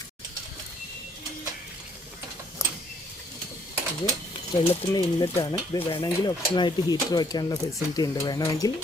ഇത് വെള്ളത്തിൻ്റെ ഇൻലെറ്റാണ്. ഇത് വേണമെങ്കിൽ ഓപ്ഷനായിട്ട് ഹീറ്റർ വയ്ക്കാനുള്ള ഫെസിലിറ്റി ഉണ്ട്, വേണമെങ്കിൽ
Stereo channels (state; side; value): normal; both; correlation 0.66